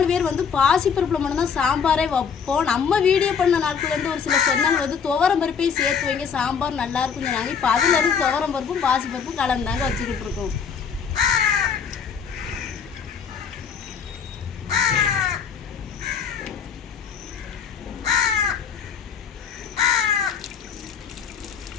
பேர் வந்து பாசிப்பருப்பில் மட்டும்தான் சாம்பாரே வைப்போம். நம்ம வீடியோ பண்ண நாட்கள் வந்து ஒரு சில சொந்தங்கள் வந்து துவரம் பருப்பையும் சேர்த்து வைங்க, சாம்பார் நல்லா இருக்கும்னு சொன்னாங்க. இப்போ அதுலேருந்து துவரம் பருப்பும் பாசிப்பருப்பும் கலந்தாங்க வச்சுக்கிட்டு இருக்கோம்.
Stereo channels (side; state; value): right; quieter; 6.7 dB